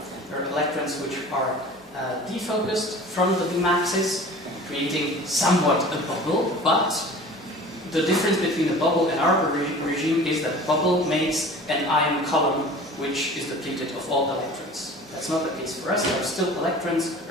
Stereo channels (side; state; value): both; normal; correlation 0.42